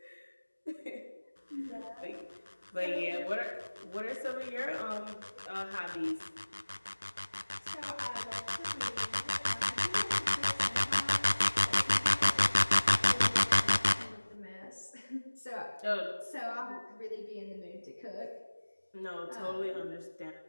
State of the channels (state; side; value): inverted; both; correlation -1.00